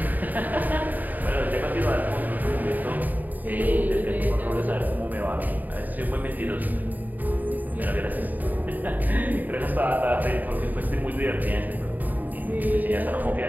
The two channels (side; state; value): left; late; 0.084 ms